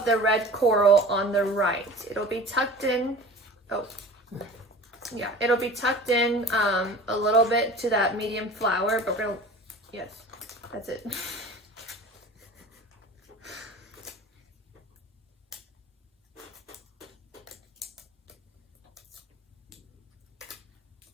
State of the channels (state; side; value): normal; both; correlation 0.40